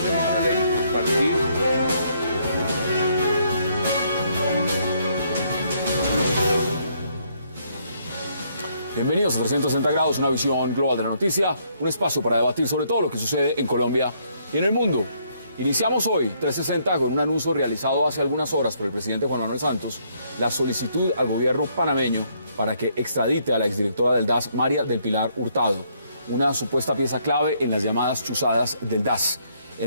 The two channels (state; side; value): inverted; both; correlation -0.70